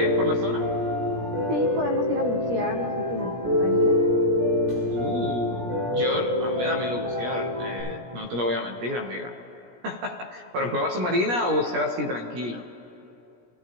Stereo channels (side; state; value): left; late; 17 ms